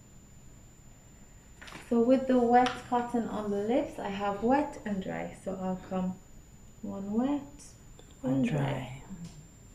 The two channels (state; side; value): identical; both; correlation 1.00